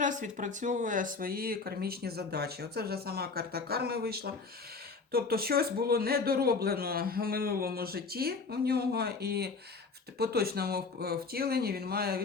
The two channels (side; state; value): right; quieter; 4.4 dB